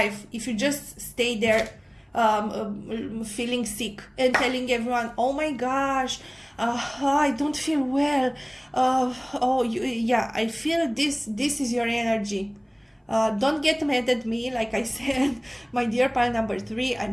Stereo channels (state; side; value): identical; both; correlation 1.00